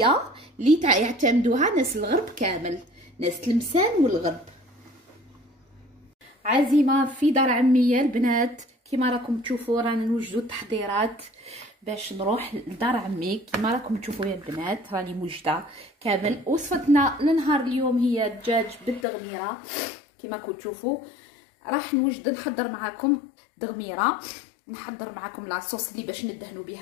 اللي يعتمدوها ناس الغرب كامل، ناس تلمسان والغرب. عزيمه في دار عمية البنات، كيما راكم تشوفوا رانا نوجدوا التحضيرات باش نروح لدار عمي. كيما راكم تشوفوا يا البنات راني موجده كامل. وصفتنا لنهار اليوم هي الدجاج بالتغميره. كيما راكم تشوفوا راح نوجد نحضر معكم دغميره، نحضر معكم لاصوص اللي باش ندهنوا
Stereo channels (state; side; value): drops out; right; at 19.1 s